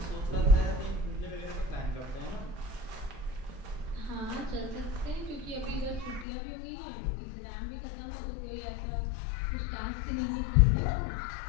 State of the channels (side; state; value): right; drops out; at 6.2 s